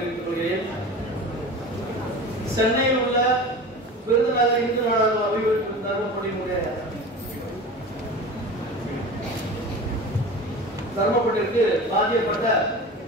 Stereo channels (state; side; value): normal; both; correlation 0.34